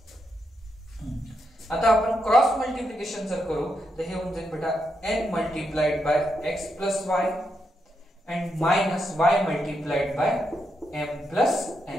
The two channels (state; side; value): normal; both; correlation 0.82